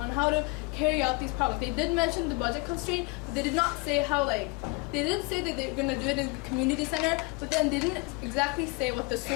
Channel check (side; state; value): right; quieter; 27.4 dB